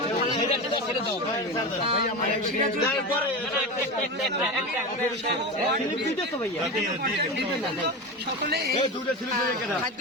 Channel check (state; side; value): normal; both; correlation 0.23